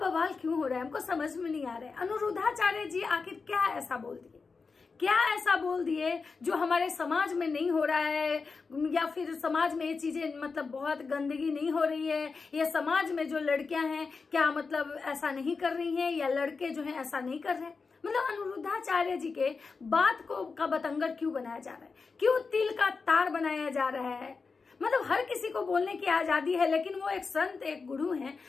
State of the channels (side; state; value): right; quieter; 4.7 dB